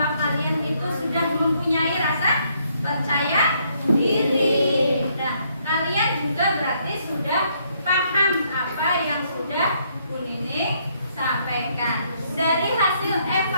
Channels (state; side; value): inverted; both; correlation -0.71